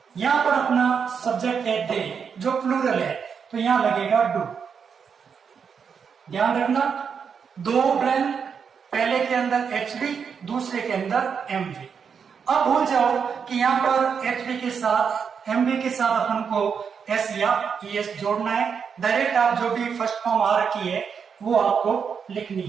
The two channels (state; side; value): quieter; left; 6.6 dB